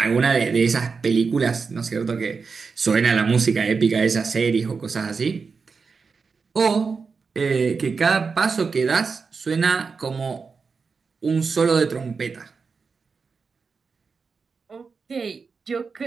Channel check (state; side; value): quieter; left; 5.0 dB